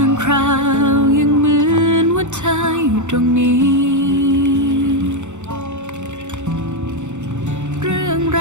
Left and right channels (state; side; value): late; left; 0.84 ms